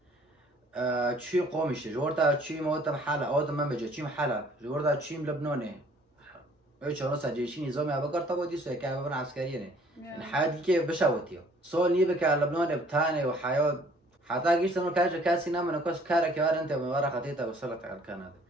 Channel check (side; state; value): both; normal; correlation 0.57